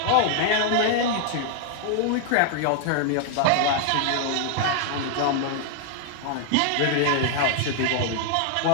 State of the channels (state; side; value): different; both; correlation 0.00